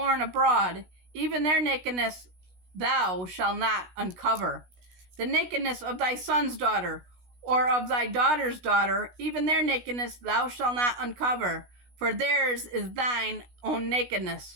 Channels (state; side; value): late; left; 16 ms